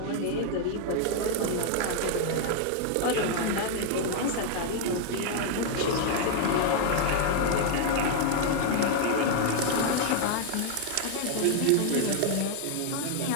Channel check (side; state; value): both; different; correlation 0.00